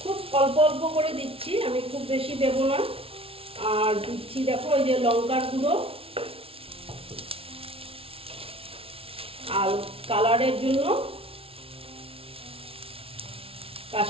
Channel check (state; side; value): late; left; 0.27 ms